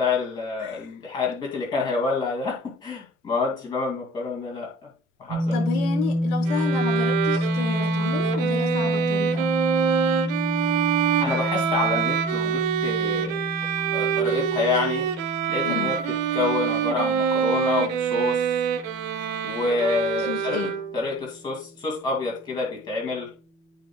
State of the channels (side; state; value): both; normal; correlation 0.41